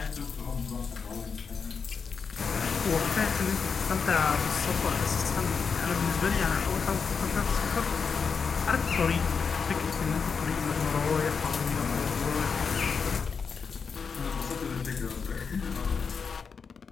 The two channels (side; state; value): right; quieter; 5.7 dB